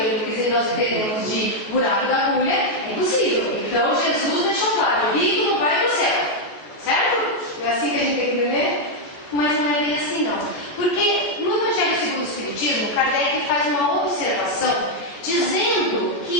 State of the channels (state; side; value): late; right; 14 ms